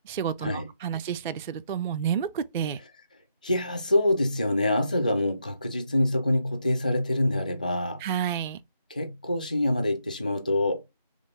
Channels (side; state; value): both; inverted; correlation -0.78